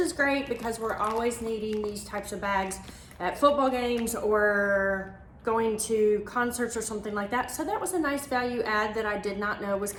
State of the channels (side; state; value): both; identical; correlation 1.00